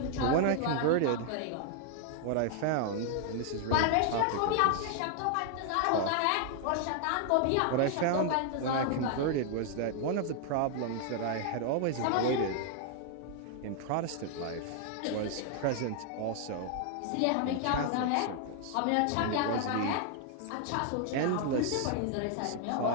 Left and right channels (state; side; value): different; both; correlation 0.00